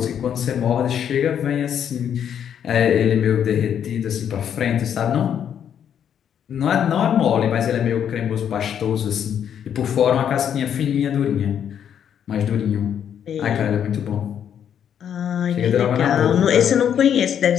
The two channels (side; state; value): right; quieter; 8.9 dB